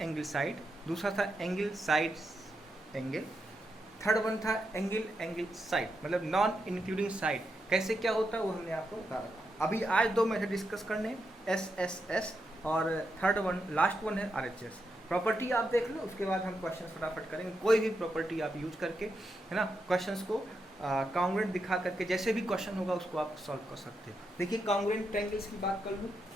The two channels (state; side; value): normal; both; correlation 0.84